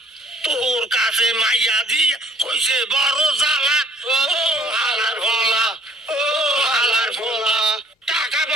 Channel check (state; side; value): normal; both; correlation 0.56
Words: তোর কাছে মাইয়া দি কইছে বড় জ্বালা ও হালার ভোলা ও হালার ভোলা টাকা